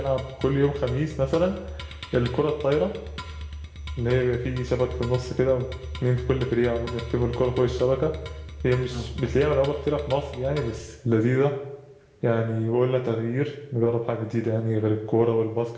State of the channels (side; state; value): both; identical; correlation 1.00